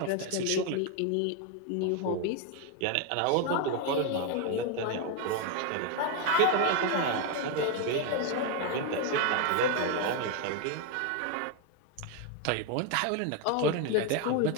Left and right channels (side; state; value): both; different; correlation 0.01